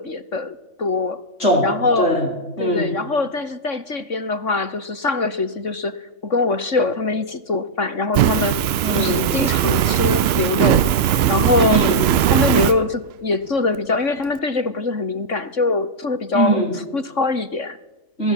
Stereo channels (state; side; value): late; right; 2.9 ms